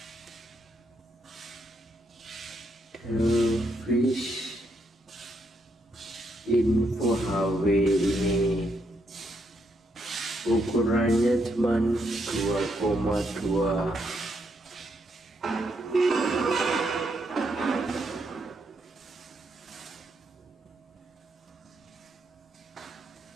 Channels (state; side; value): normal; both; correlation 0.77